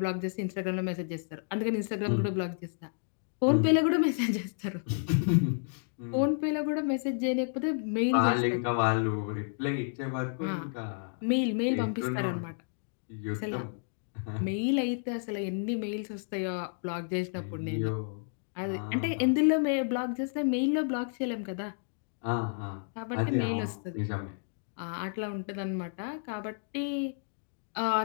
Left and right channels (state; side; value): silent; right; digital silence